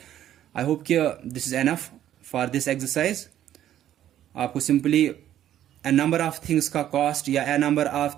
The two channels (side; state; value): left; quieter; 11.6 dB